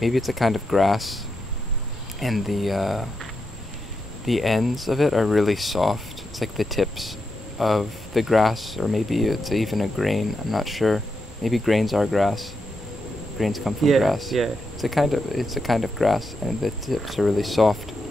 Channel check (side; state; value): both; normal; correlation 0.85